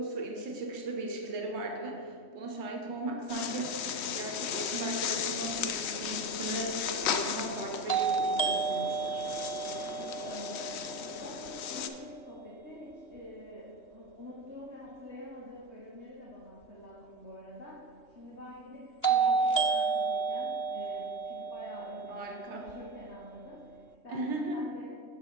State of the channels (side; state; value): right; late; 3.2 ms